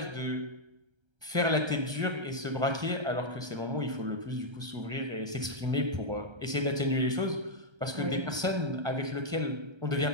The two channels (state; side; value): late; left; 1.3 ms